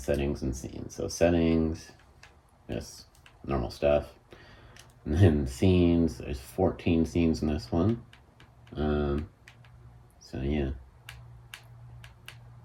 and scenes. So settings, just normal stuff. And then scenes, there's 14 scenes in this one. So yeah.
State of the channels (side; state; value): both; identical; correlation 1.00